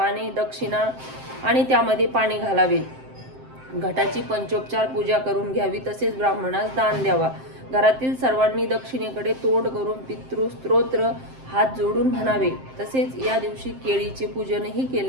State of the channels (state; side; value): late; left; 7.6 ms